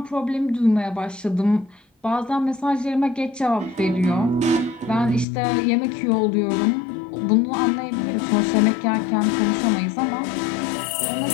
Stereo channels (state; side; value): drops out; right; at 5.2 s